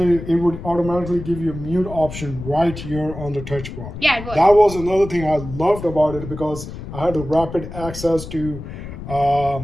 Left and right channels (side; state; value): left; noise; rumble, 10 dB below the sound